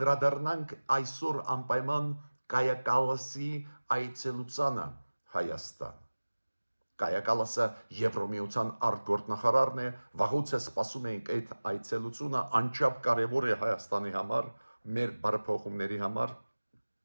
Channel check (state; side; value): inverted; both; correlation -1.00